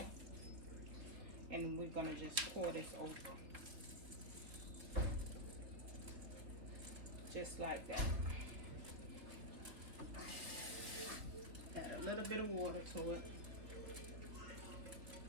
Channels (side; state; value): left; late; 3.6 ms